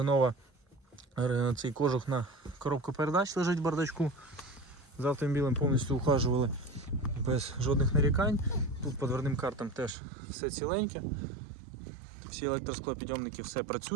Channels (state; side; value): drops out; left; at 10.0 s